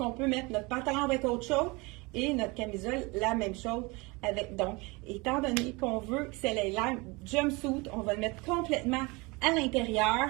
peut mettre notre pantalon avec autre chose et notre camisole, la même chose avec. Donc, étant donné qu'on veut que c'est l'air jumpsuit, on va le mettre complètement à l'intérieur.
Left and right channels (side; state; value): left; quieter; 25.9 dB